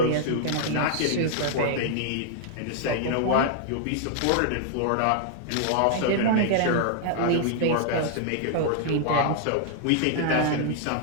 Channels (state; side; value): different; both; correlation -0.01